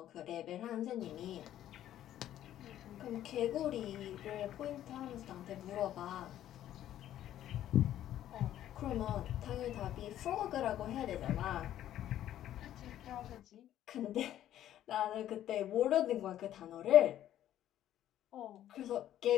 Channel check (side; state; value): right; quieter; 12.1 dB